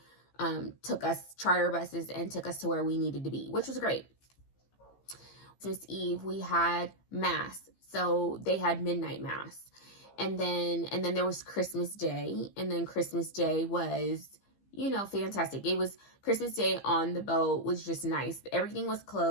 charter buses and took us to where we needed to be, which was great. Christmas Eve, we had mass. So they had midnight mass. And then there was Christmas Day. And then Christmas Day was, fantastic. It was Christmas Day on the boat was just nice. Everything was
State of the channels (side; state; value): right; late; 15 ms